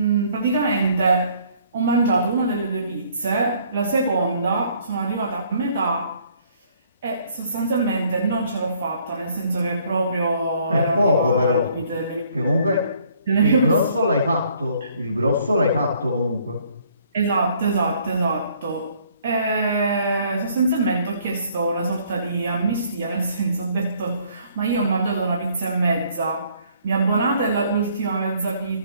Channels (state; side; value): inverted; both; correlation -0.62